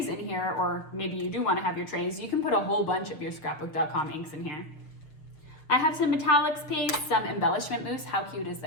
in here, or maybe you do want to have your trays, you can put a whole bunch of your Scrapbook.com inks in here. I have some metallics paste, some embellishment mousse. How cute is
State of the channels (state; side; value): late; right; 6.6 ms